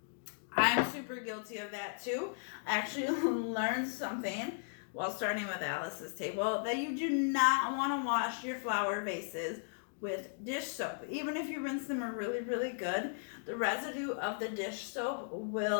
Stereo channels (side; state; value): right; silent; digital silence